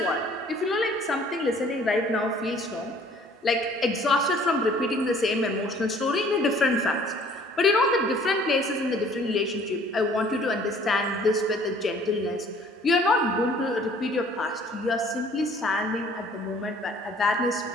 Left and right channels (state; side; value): normal; both; correlation 0.55